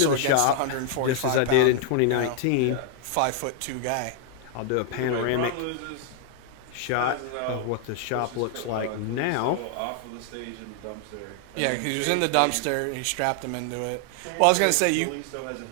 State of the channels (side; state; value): both; different; correlation 0.00